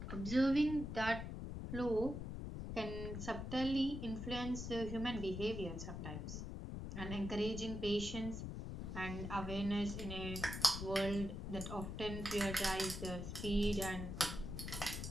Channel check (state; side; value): noise; left; rumble, 5 dB below the sound